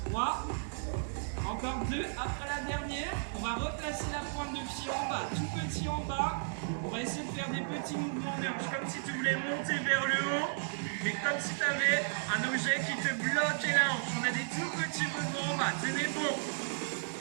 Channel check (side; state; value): left; silent; digital silence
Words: 3. Encore 2 après la dernière. On va replacer la pointe de pied en bas. Tout petit en bas. On va essayer de faire des petits mouvements de hanche. Comme si tu voulais monter vers le haut. Mais comme si tu avais un objet qui te bloquait la hanche. On a des tout petits mouvements en bas. Tenez bon.